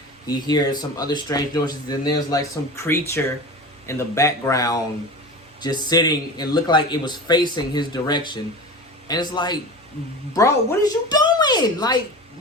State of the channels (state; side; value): normal; both; correlation 0.31